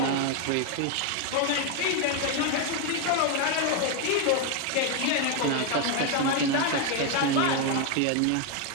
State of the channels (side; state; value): both; different; correlation 0.01